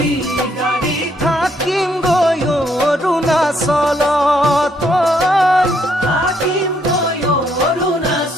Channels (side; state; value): both; normal; correlation 0.71